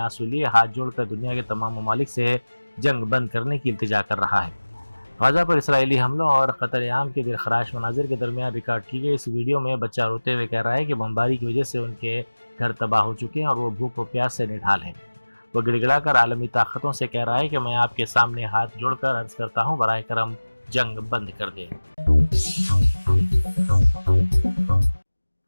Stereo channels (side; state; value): both; inverted; correlation -1.00